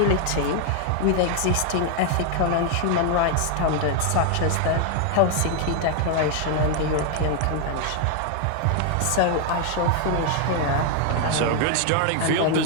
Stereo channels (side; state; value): both; different; correlation 0.00